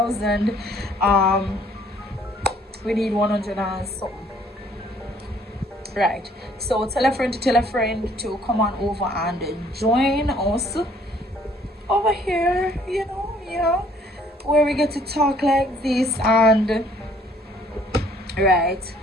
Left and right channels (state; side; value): normal; both; correlation 0.60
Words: We need 100 and something, right? So tell a friend to come on over and join us over here, where we get to talk like this and right,